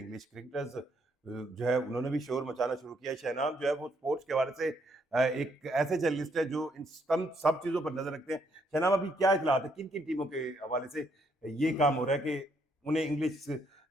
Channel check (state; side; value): normal; both; correlation 0.72